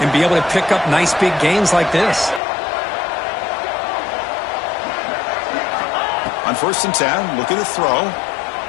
be able to pick up nice big gains like this. On 1st and 10, looking to throw.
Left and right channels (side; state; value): right; drops out; at 2.4 s